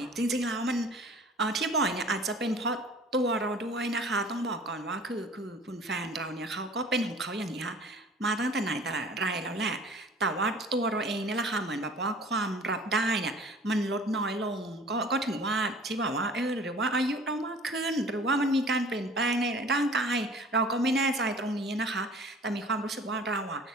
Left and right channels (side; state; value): both; normal; correlation 0.47